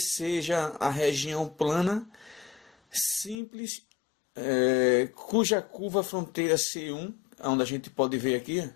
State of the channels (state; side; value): drops out; right; at 3.4 s